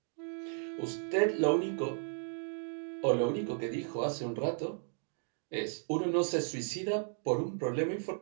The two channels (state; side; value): silent; left; 55 dB below the other